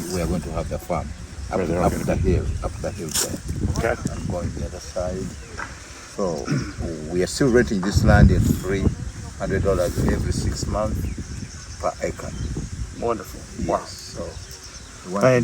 going to have the farm. Up the hill there. Okay. And going the other side. So we are still renting this land at $300 every 6 months per acre. Wonderful. Yes. Wow. So we want to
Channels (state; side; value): identical; both; correlation 1.00